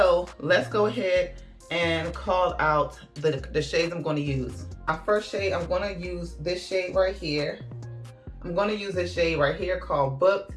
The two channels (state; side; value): identical; both; correlation 1.00